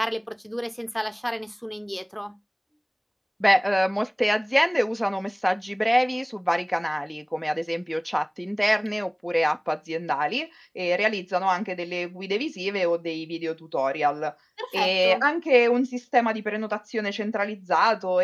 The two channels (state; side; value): identical; both; correlation 1.00